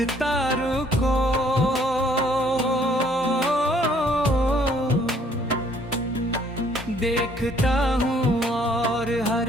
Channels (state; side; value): normal; both; correlation 0.62